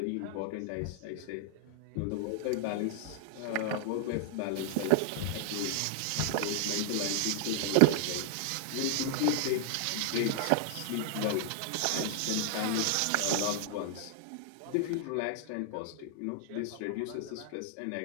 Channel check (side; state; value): both; different; correlation 0.00